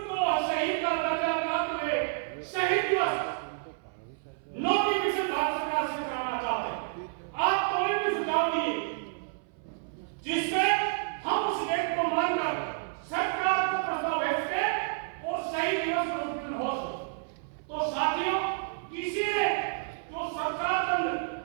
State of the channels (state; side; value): silent; left; 58 dB below the other